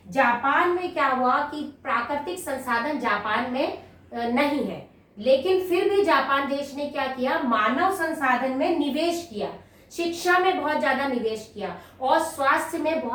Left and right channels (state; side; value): identical; both; correlation 1.00